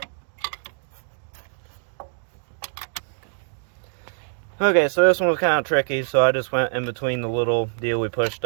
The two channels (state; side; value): silent; left; digital silence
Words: Okay, so this one was kind of tricky, so I just went in between the little deal we pushed